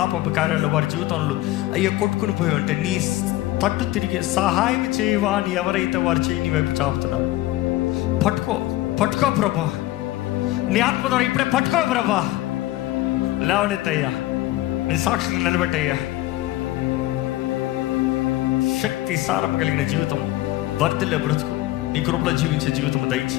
కార్యాల్లో వారి జీవితంలో అయ్యో కొట్టుకుని పోయి ఉంటే నీ తట్టు తిరిగి సహాయం చేయవా అని ఎవరైతే వారు చేయి నీ వైపు చాపుతున్నావు, పట్టుకో ప్రభా. నీ ఆత్మ ద్వారా ఇప్పుడే పట్టుకో ప్రభా. లేవనెత్తయ్యా, నీ సాక్షులు నిలబెట్టయ్యా. శక్తి సారం కలిగిన జీవితం, వర్ధిల్లే బ్రతుకు, నీ కృపలో జీవించే జీవితం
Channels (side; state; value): right; quieter; 16.7 dB